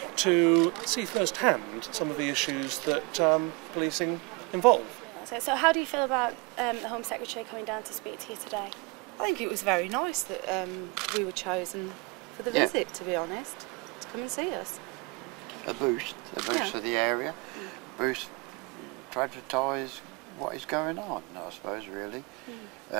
to see firsthand some of the issues that policing involve. So how do you feel about the Home Secretary coming down to speak to you today? I think it was very nice that we were chosen for the visit, to be honest, to come and see us. A boost for the area, boost to advertise what is going on, I suppose, really.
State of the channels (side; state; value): left; quieter; 27.6 dB